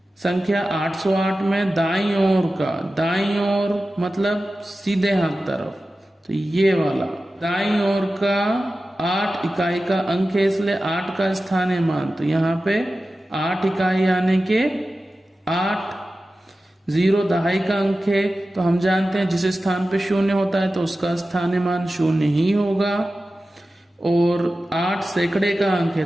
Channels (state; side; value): normal; both; correlation 0.94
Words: संख्या 808 में दाईं ओर का, दाईं ओर मतलब सीधे हाथ तरफ, तो ये वाला दाईं ओर का 8 इकाई का अंक है इसलिए 8 का स्थानीय मान तो यहाँ पे 8 इकाई यानी के 8। 0 दहाई का अंक है तो हम जानते हैं जिस स्थान पे 0 होता है तो उसका स्थानीय मान 0 ही होगा। और 8 सैकड़े का अंक है